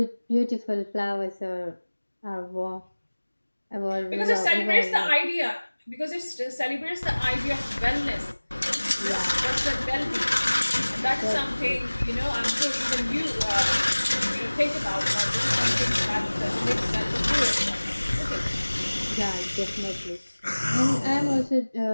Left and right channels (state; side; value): inverted; both; correlation -1.00